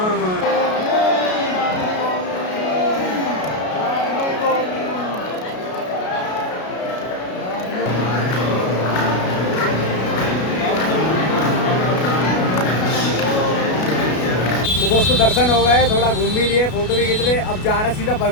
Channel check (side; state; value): right; late; 33 ms